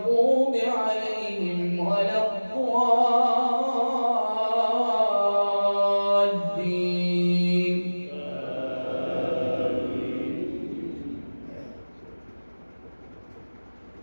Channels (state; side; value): inverted; both; correlation -1.00